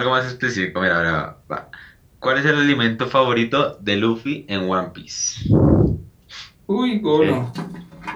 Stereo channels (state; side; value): identical; both; correlation 1.00